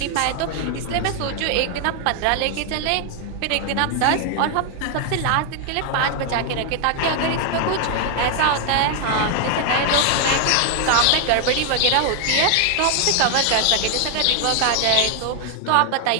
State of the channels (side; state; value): both; different; correlation 0.00